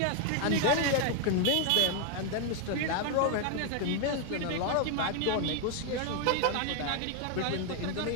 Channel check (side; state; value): both; different; correlation 0.01